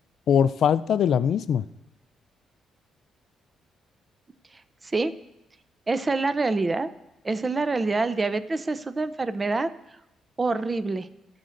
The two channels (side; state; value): both; normal; correlation 0.80